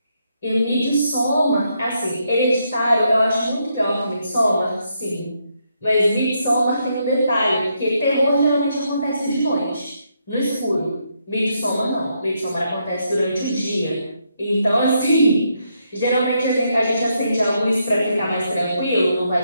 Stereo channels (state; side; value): inverted; both; correlation -0.78